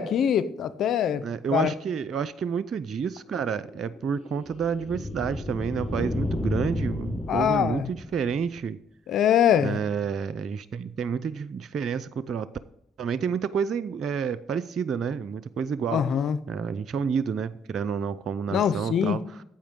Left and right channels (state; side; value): normal; both; correlation 0.61